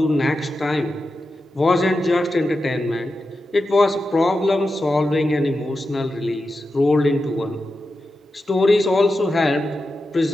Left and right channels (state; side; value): normal; both; correlation 0.90